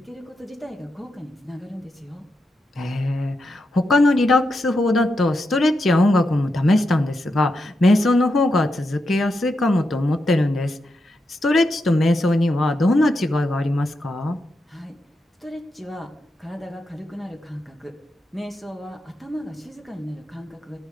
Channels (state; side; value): normal; both; correlation 0.85